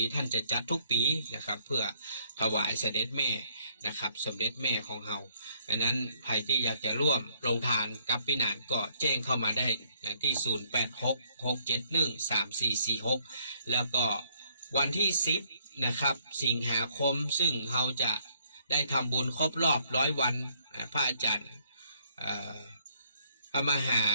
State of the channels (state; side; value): inverted; both; correlation -0.67